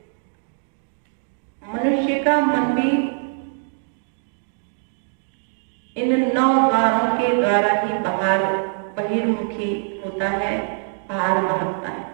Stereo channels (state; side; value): silent; left; digital silence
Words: मनुष्य का मन भी इन 9 द्वारों के द्वारा ही बहिर्मुखी होता है, बाहर भागता है